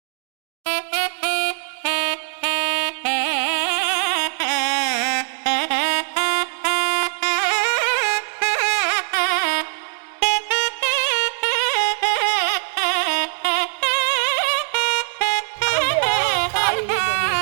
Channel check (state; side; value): silent; left; digital silence